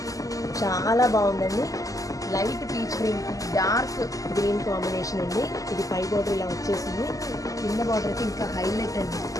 చాలా బాగుందండి. Light peach green, dark green combination అండి. ఇది పై బార్డర్ ఇలా వచ్చేసింది, కింద బార్డర్కి ఇంకా హైలైట్ అండి.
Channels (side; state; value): right; late; 0.17 ms